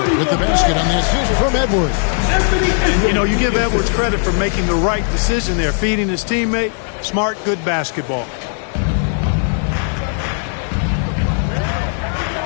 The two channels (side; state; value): right; silent; 61 dB below the other